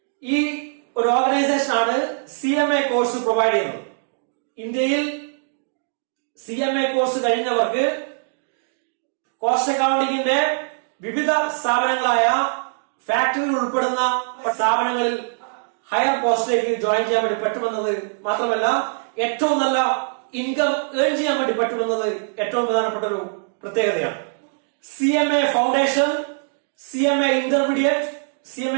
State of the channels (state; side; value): silent; left; digital silence